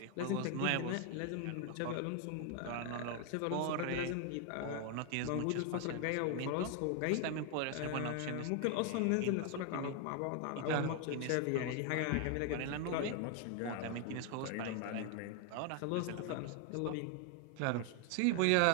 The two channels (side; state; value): both; different; correlation 0.00